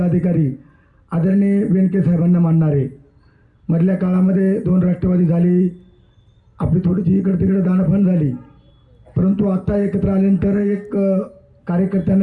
आदरणीय वेनके साहेबांना मानणारे। मधल्या काळामध्ये 2 राष्ट्रवादी झाली, आपली थोडीशी इकडे तिकडे दाणाफाण झाली, परंतु आता एकत्र आल्यानंतर एक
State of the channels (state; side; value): identical; both; correlation 1.00